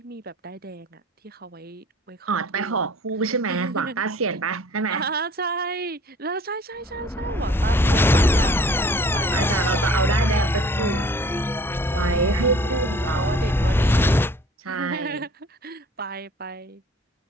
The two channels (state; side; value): normal; both; correlation 0.50